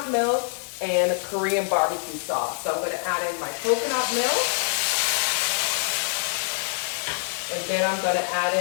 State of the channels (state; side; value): silent; right; digital silence